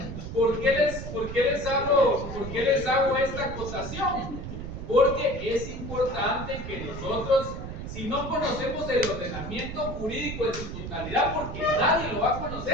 ¿por qué les hago esta acotación? Porque es importante que nosotros, si no conocemos el ordenamiento jurídico en su totalidad, porque nadie lo va a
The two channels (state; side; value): noise; right; rumble, 8 dB below the sound